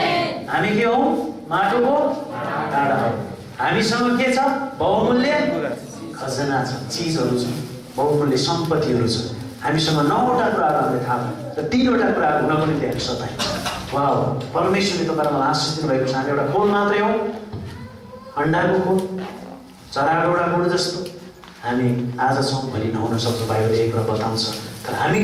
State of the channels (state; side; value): identical; both; correlation 1.00